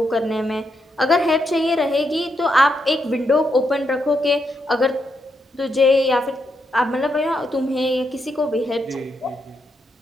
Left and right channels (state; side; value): normal; both; correlation 0.81